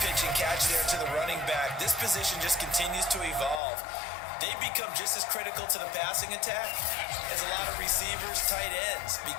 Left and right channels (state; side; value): drops out; right; at 3.6 s